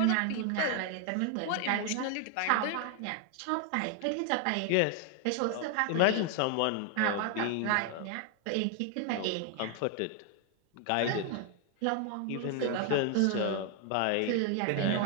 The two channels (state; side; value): different; both; correlation 0.00